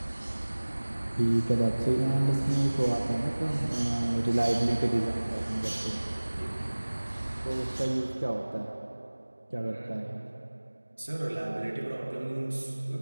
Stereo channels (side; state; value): both; inverted; correlation -1.00